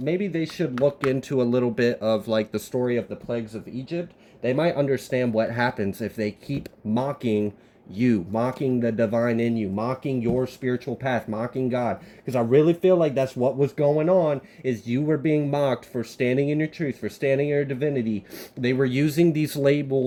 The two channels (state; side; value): identical; both; correlation 1.00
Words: they should look into a little bit of like the story of the plagues of Egypt. They might understand what happens if they keep mocking you, mocking the divine in you, mocking your spiritual path, mocking God. Because I really feel like that's what was going on, is you were being mocked for standing in your truth, for standing in your divinity. They were using these